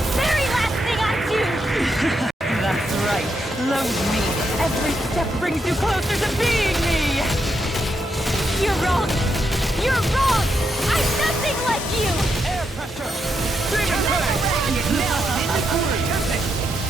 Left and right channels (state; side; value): normal; both; correlation 0.81